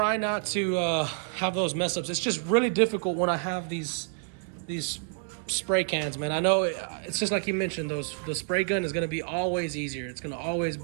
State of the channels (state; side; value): silent; left; 59 dB below the other